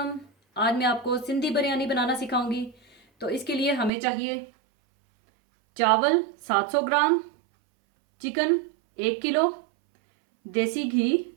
आज मैं आपको सिंधी बिरयानी बनाना सिखाऊंगी। तो इसके लिए हमें चाहिए चावल 700 ग्राम, चिकन 1 किलो, देसी घी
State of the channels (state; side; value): drops out; left; at 3.9 s